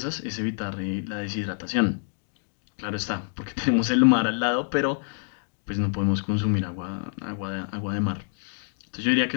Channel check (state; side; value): silent; right; digital silence